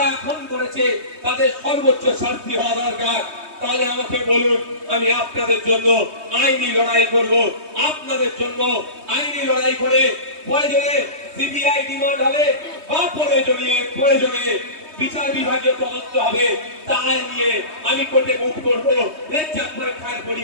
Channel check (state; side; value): late; left; 3.2 ms